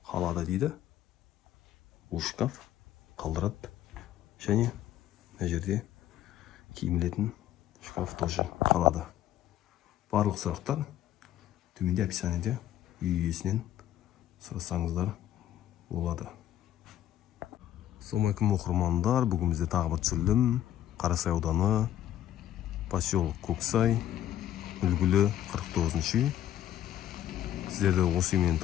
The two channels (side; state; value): right; quieter; 12.1 dB